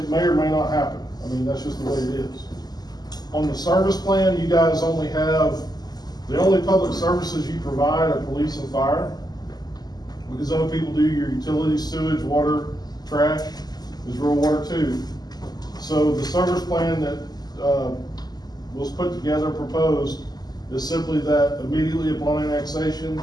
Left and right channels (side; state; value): right; late; 0.20 ms